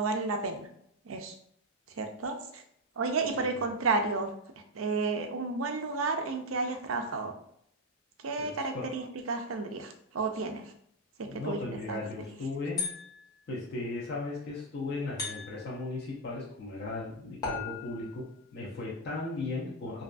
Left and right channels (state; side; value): normal; both; correlation 0.00